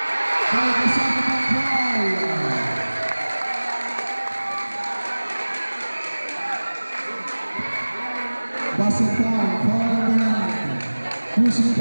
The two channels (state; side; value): inverted; both; correlation -1.00